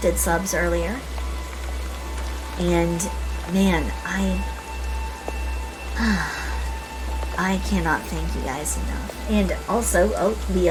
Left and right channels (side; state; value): both; identical; correlation 1.00